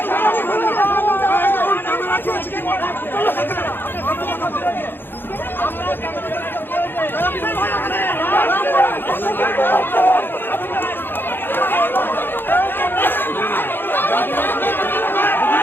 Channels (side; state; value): right; late; 0.099 ms